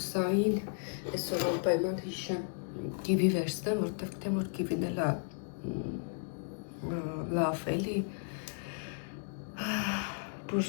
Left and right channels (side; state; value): right; silent; digital silence